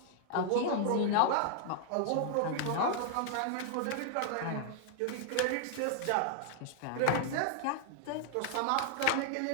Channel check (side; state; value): both; different; correlation -0.01